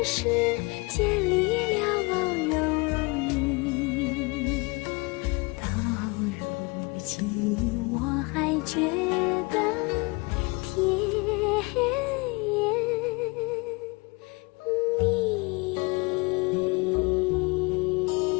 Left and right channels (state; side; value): quieter; right; 27.1 dB